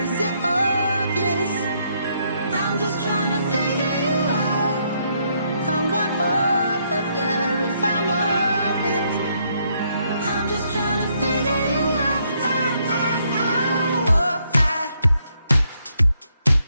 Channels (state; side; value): inverted; both; correlation -0.73